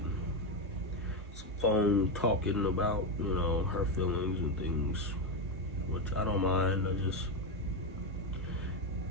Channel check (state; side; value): normal; both; correlation 0.09